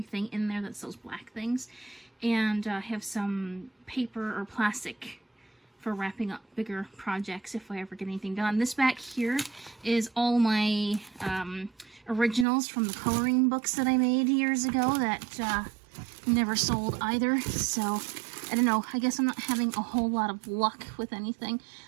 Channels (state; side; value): drops out; left; at 12.5 s